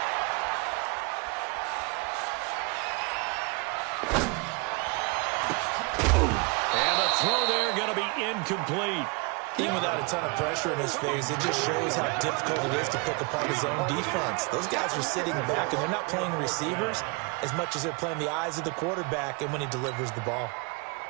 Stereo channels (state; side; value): quieter; left; 31.2 dB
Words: Throw there going to be incomplete. Even without a ton of pressure in his face, it just shows how difficult it is to pick apart his own defense. Those guys are sitting back, and they're not playing receivers as much as they're playing the eyes of the quarterback and when he delivers the ball.